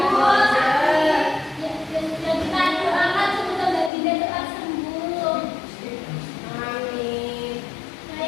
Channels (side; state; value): right; drops out; at 3.9 s